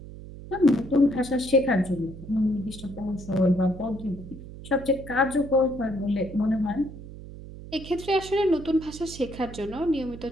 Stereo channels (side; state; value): right; noise; hum, 14 dB below the sound